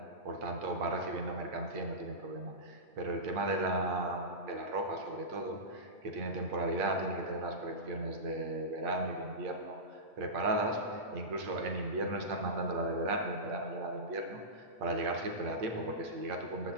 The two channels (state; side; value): late; left; 8.7 ms